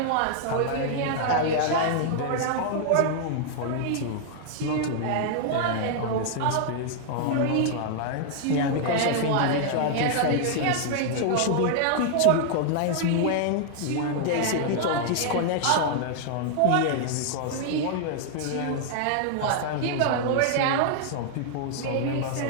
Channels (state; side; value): different; both; correlation 0.00